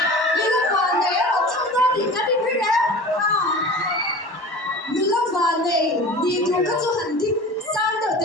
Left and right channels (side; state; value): right; late; 1.1 ms